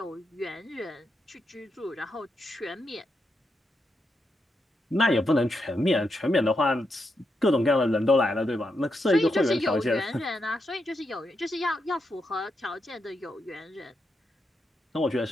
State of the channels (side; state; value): both; normal; correlation 0.83